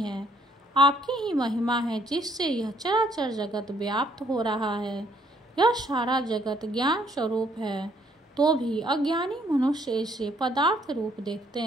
है। आपकी ही महिमा है जिससे यह चराचर जगत व्याप्त हो रहा है। यह सारा जगत ज्ञान स्वरूप है, तो भी अज्ञानी मनुष्य इसे पदार्थ रूप देखते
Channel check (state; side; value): normal; both; correlation 0.66